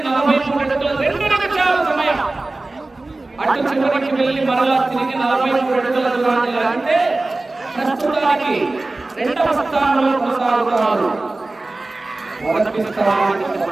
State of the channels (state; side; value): quieter; left; 3.1 dB